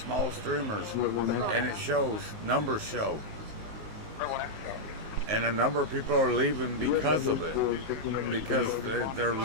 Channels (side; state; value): left; late; 19 ms